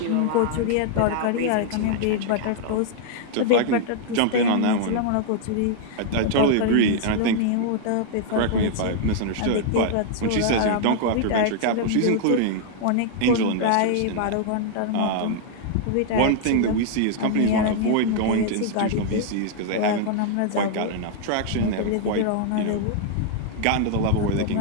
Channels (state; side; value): different; both; correlation 0.00